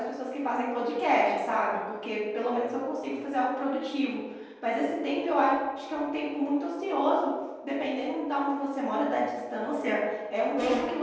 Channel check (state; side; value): identical; both; correlation 1.00